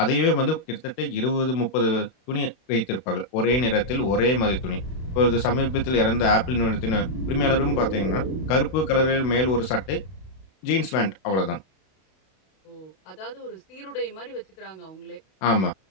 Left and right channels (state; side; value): late; right; 32 ms